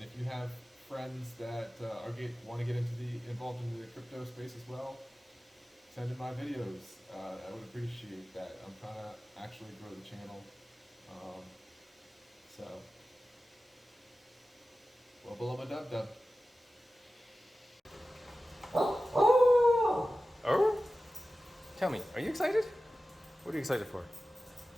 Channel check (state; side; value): normal; both; correlation 0.95